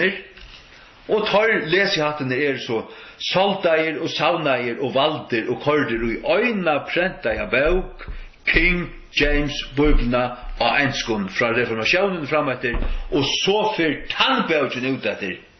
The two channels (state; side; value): identical; both; correlation 1.00